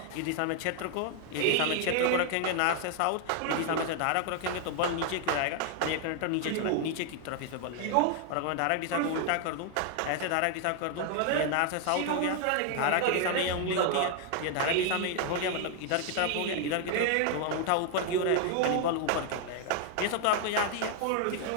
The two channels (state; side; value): different; both; correlation 0.00